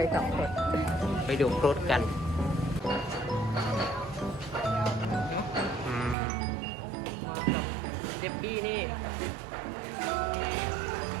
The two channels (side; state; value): left; drops out; at 6.2 s